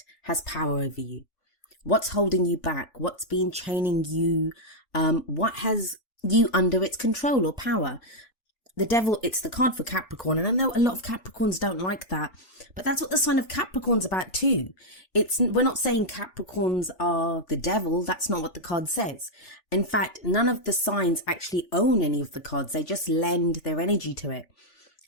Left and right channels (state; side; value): late; right; 3.5 ms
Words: has power over you. What's holding you back? What's been chaining you? What has you under its control or power? The Devil, it's the card for Capricorn, and I know a lot of Capricorns don't like that, but that's what the sign of Capricorn's about too. We're not saying Capricorns are the devil. That's not what the card says. In fact, none of the signs actually own any of the cards. They just lend their energy to it.